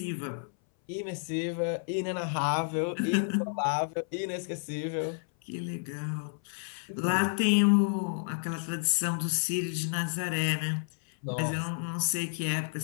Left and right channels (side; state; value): right; silent; 57 dB below the other